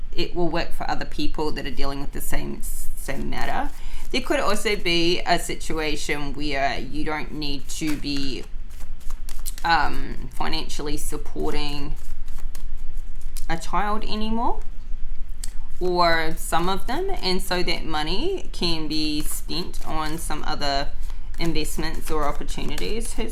it will work for other people that are dealing with the same matter. There could also be a situation where you don't need to be financially supporting a child anymore, or some of them, and so that money can be spent on some other investments or opportunities.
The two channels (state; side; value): identical; both; correlation 1.00